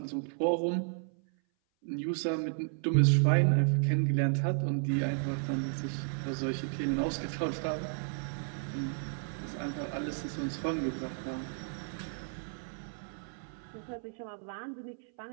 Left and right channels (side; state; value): left; silent; 56 dB below the other